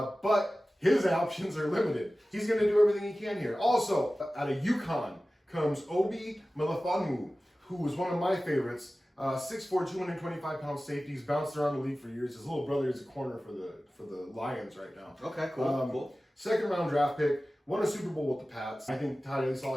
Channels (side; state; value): both; normal; correlation 0.96